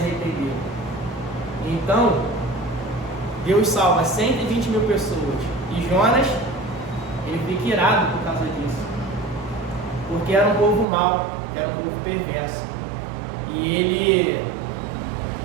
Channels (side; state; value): left; drops out; at 10.9 s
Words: Então, Deus salva 120 mil pessoas. E Jonas, ele fica irado por causa disso. Porque era um povo mau, era um povo perverso. E ele